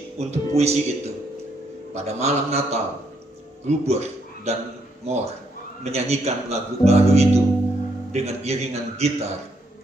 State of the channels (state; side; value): normal; both; correlation 0.74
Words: untuk puisi itu. Pada malam Natal, Gruber dan Moore menyanyikan lagu baru itu dengan iringan gitar